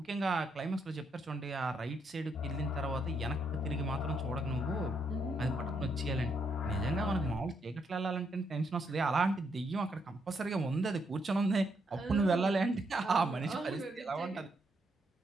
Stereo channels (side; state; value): both; normal; correlation 0.76